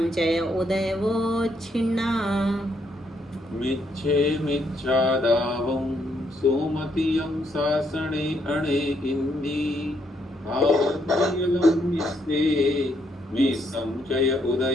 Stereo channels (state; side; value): normal; both; correlation 0.74